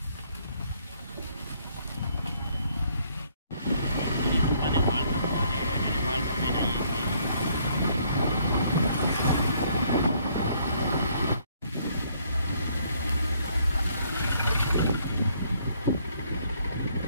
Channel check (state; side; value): inverted; both; correlation -0.66